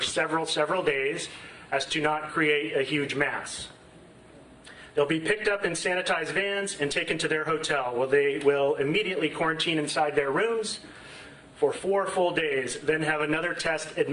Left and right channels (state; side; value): identical; both; correlation 1.00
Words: several days, as to not create a huge mass. They'll be picked up in sanitized vans and taken to their hotel, where they will immediately quarantine inside their rooms for 4 full days, then have another test